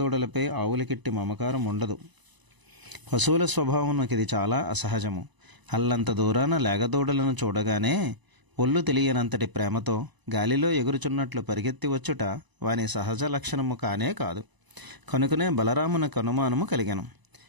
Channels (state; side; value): late; left; 1.0 ms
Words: ఆవులకిట్టి మమకారం ఉండదు. పశువుల స్వభావంకి ఇది చాలా అసహజము. అల్లంత దూరాన లేగదూడలను చూడగానే ఒళ్ళు తెలియనంతటి ప్రేమతో గాలిలో ఎగురుచున్నట్లు పరిగెత్తి వచ్చుట వాని సహజ లక్షణము కానే కాదు. కనుకనే బలరామునకు అనుమానము కలిగెను.